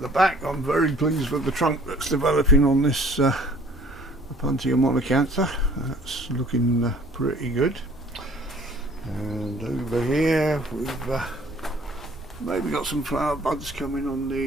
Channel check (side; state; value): both; normal; correlation 0.54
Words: back, I'm very pleased with the trunk that's developing on this Punsia monocantha. That's looking pretty good. And over here we've maybe got some flower buds coming on